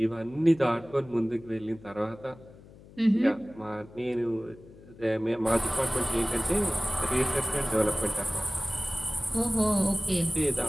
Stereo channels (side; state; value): left; noise; hum, 21 dB below the sound